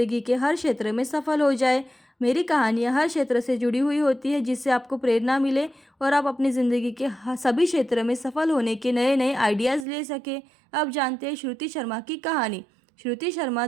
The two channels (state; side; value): drops out; left; at 9.9 s